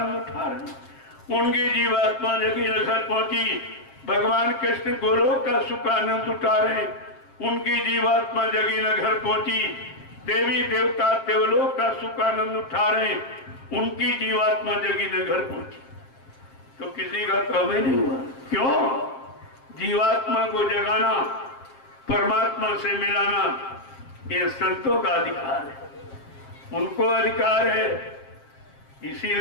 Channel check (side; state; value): right; late; 7.5 ms